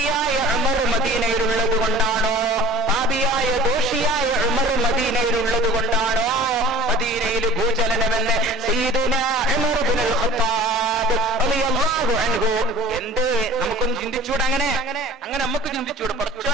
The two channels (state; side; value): normal; both; correlation 0.43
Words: ഉമർ മദീനയിലുള്ളത് കൊണ്ടാണോ, പാപിയായ ദോഷിയായ ഉമർ മദീനയിലുള്ളത് കൊണ്ടാണോ മദീനയിൽ ഭൂചലനമെന്ന് സയ്യിദുനാ ഉമർ ഇബ്നുൽ ഖത്താബ് റളിയല്ലാഹു അൻഹു. എന്ത് നമുക്കൊന്ന് ചിന്തിച്ചൂടെ? അങ്ങനെ നമുക്ക് ചിന്തിച്ചൂടെ?